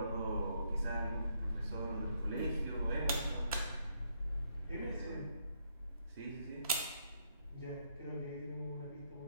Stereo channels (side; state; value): both; inverted; correlation -0.73